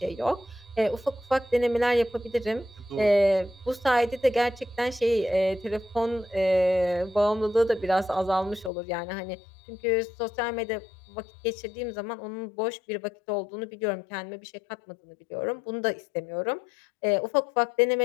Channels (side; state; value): right; drops out; at 8.7 s